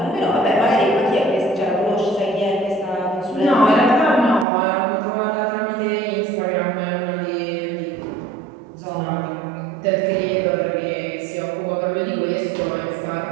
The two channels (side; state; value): left; drops out; at 4.5 s